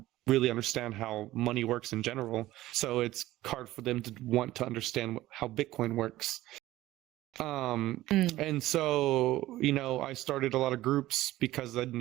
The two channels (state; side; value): quieter; left; 16.1 dB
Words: really understand how money works in general. So it's hard for them to want to understand how Bitcoin works. And so, I started a lot of groups because in